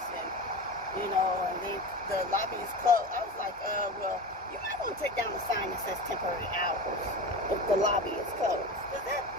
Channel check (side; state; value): both; normal; correlation 0.29